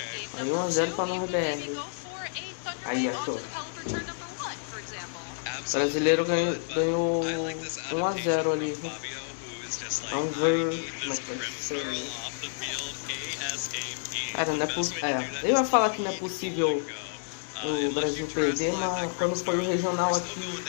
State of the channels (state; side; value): silent; right; 58 dB below the other